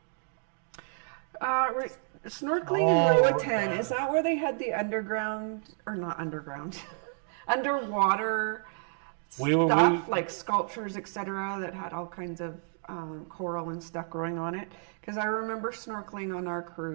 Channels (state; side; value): silent; left; 57 dB below the other